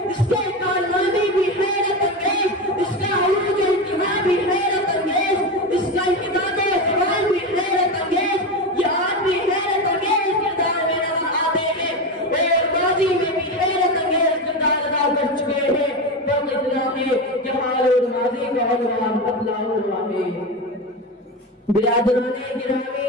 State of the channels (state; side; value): normal; both; correlation 0.19